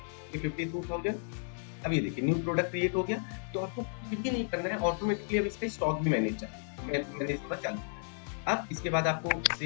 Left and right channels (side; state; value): right; silent; 56 dB below the other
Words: ये 52,000। अब ये देखिए न्यू प्रोडक्ट क्रिएट हो गया। तो आपको कुछ भी नहीं करना है, ऑटोमेटिकली अब इसका स्टॉक भी मैनेज होना चालू। अब इसके बाद आपको